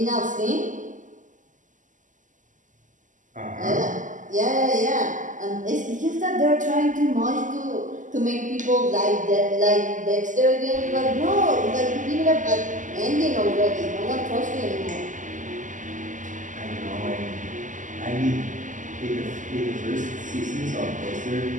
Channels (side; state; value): left; late; 0.37 ms